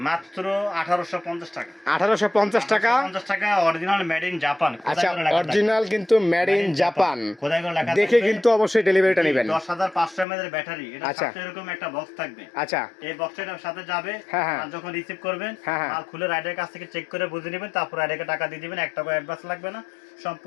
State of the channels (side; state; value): right; drops out; at 10.2 s